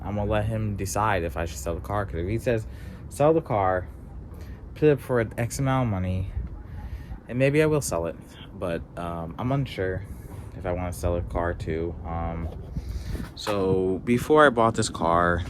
I'm gonna let him decide if I should sell the car. Because if he says sell the car, put it for an X amount of money, and maybe I will sell it, but I'm unsure if I want to sell a car too. So before I bought this car,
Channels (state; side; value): identical; both; correlation 1.00